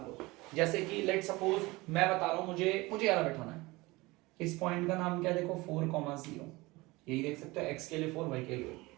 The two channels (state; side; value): quieter; left; 21.9 dB